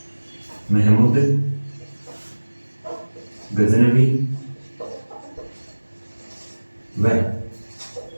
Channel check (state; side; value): inverted; both; correlation -1.00